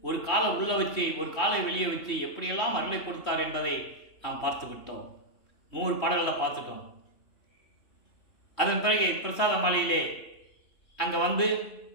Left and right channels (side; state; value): right; late; 3.1 ms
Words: ஒரு காலை உள்ள வச்சு ஒரு காலை வெளியே வச்சு எப்படியெல்லாம் அருளை கொடுத்தார் என்பதை நாம் பார்த்து விட்டோம். 100 பாடல்களில் பார்த்துட்டோம். அதன் பிறகு பிரசாத மாலையிலே அங்கே வந்து,